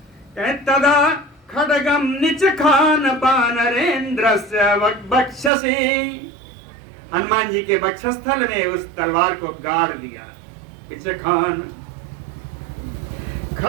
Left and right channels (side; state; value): left; drops out; at 5.5 s